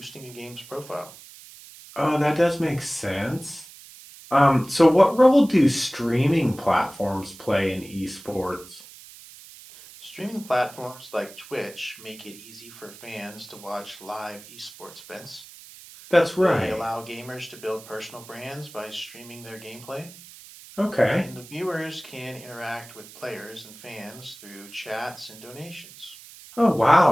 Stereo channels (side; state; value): right; noise; hiss, 19 dB below the sound